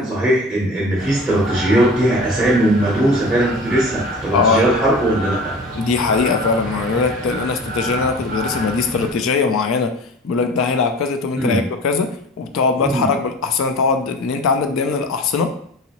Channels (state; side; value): normal; both; correlation 0.38